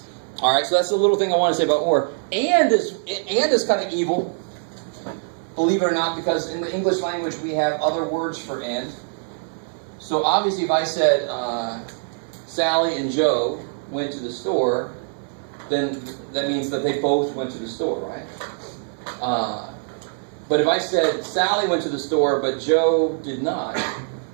All right, so that's the little thing I want to say about or. And is kind of evil, believe it or not, because in the English language we have other words for and. So obviously if I said Sally and Joe went to the store, then that means that they both went to the store, right? But if I said Sally went to the store but Joe did not,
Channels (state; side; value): silent; left; digital silence